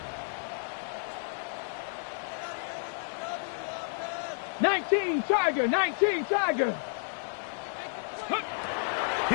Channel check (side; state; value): right; silent; 57 dB below the other